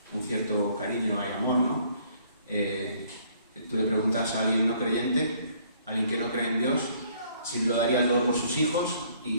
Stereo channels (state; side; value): inverted; both; correlation -0.62